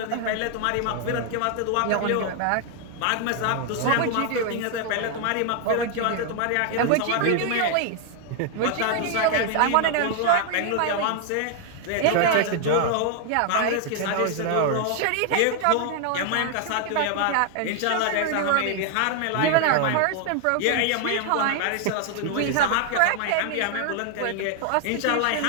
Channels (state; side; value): different; both; correlation 0.00